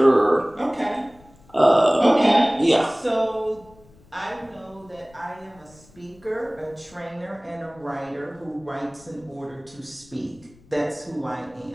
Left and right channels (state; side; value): noise; left; rumble, 27 dB below the sound